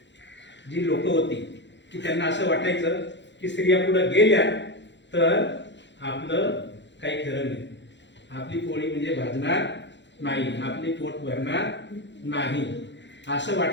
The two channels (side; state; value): right; late; 0.52 ms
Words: जी लोक होती की त्यांना असं वाटायचं की स्त्रिया पुढे गेल्या तर आपलं काही खरं नाही, आपली पोळी म्हणजे भाजणार नाही, आपली पोट भरणार नाही, असं